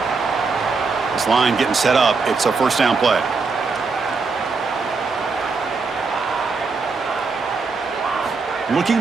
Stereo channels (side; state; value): left; quieter; 4.4 dB